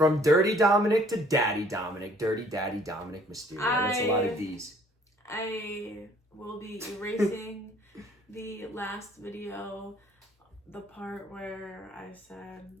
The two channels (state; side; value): normal; both; correlation 0.58